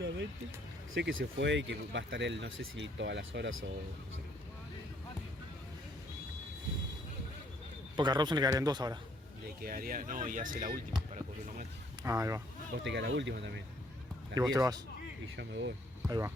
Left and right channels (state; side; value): normal; both; correlation 0.66